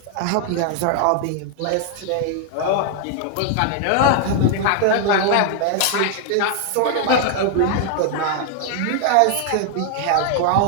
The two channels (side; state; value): both; different; correlation 0.00